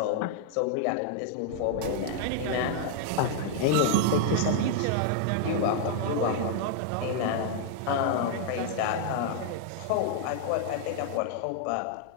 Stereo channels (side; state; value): both; different; correlation -0.01